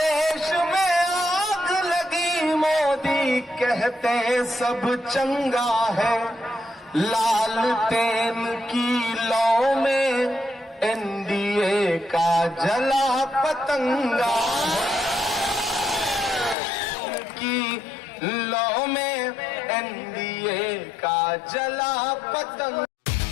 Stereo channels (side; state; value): right; drops out; at 16.6 s